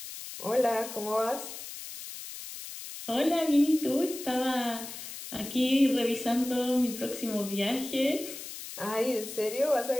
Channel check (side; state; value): left; noise; hiss, 11 dB below the sound